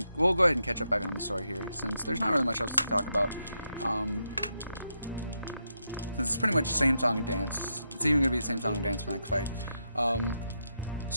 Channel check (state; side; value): inverted; both; correlation -0.83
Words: go ahead and catch up back on the story here, since there's not really much else to talk about. Since it's pretty much the same song and dance. It's even going to be the same song and dance for the next fight.